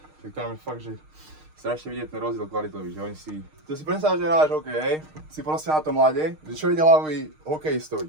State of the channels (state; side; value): late; left; 6.5 ms